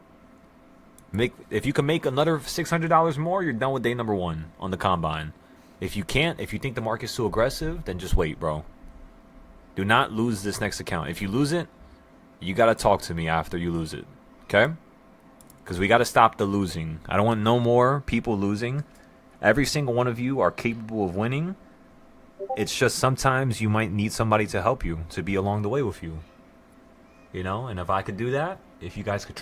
If you can make another $600 more, you're done with day number 1 on the combine. If you can't, if you think the market's too aggressive, then just wait, bro. Do not lose this next account. If you lose it, you gotta talk to me after you lose it, okay? Because we gotta stop the losing. I don't want no more people losing. Every single one of you are capable of winning. It's just sometimes you might need somebody to help you, to be along the way with you. You know, and if I could do that, if you guys could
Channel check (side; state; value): both; identical; correlation 1.00